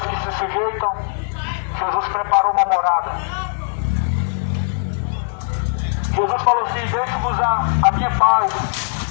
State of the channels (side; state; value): right; silent; 61 dB below the other